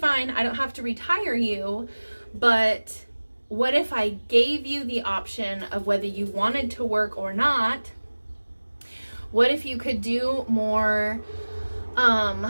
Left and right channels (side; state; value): both; inverted; correlation -1.00